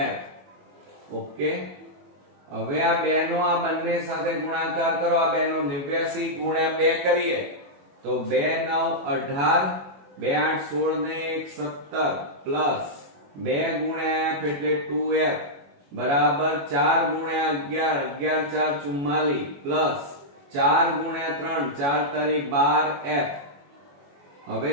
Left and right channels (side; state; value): left; late; 21 ms